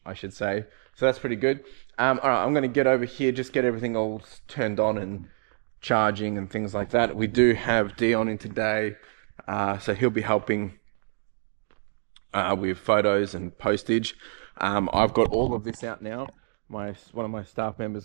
I should say. So that's pretty good. All right, I'm going to get over here, just get everything all turned on and charging and things like that. We do have Dion in today, so he'll be helping with photos and postage. I've got all of this out now. One of my staff members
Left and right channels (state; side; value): silent; left; digital silence